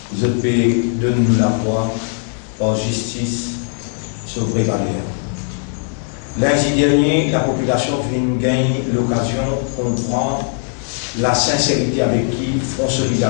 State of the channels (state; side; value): silent; right; 58 dB below the other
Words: je peux donner nous la foi par justice sur vraie valeur. Lundi dernier, la population vient gagner l'occasion de comprendre la sincérité avec qui Front